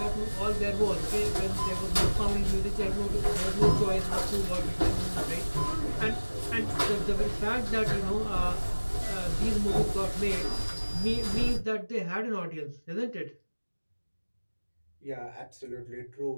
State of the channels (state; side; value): inverted; both; correlation -1.00